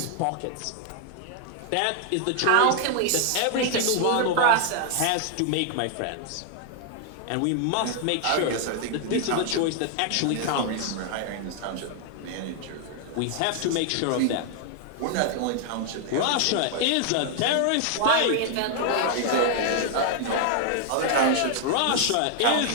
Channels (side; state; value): both; different; correlation 0.00